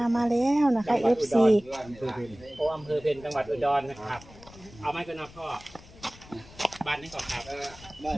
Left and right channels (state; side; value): noise; left; rumble, 21 dB below the sound